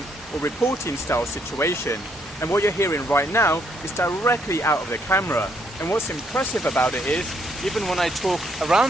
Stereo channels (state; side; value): normal; both; correlation 0.72